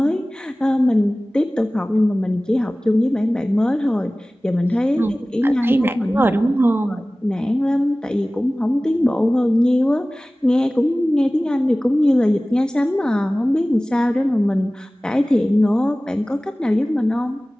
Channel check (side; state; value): both; normal; correlation 0.98